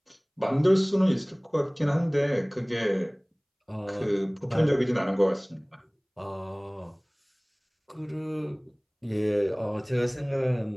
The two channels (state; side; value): identical; both; correlation 1.00